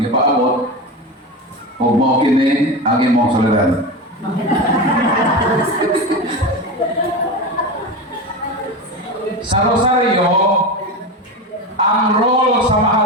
gipaabot. Ug mao kini ang imong solidaridad. Sa Rosario, ang role sa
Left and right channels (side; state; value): both; normal; correlation 0.22